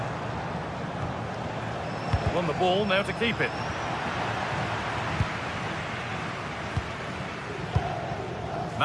Won the ball, now to keep it.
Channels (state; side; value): identical; both; correlation 1.00